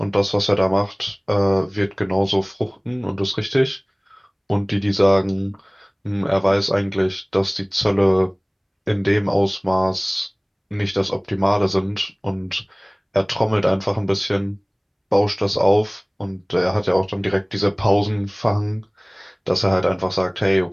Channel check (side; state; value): both; identical; correlation 1.00